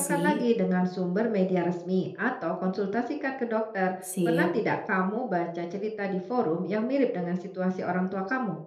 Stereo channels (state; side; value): identical; both; correlation 1.00